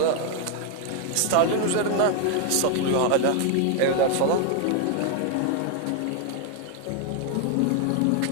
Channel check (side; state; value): both; different; correlation 0.00